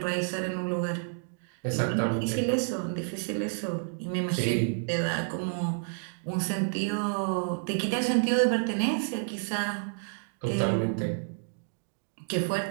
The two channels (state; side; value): silent; left; digital silence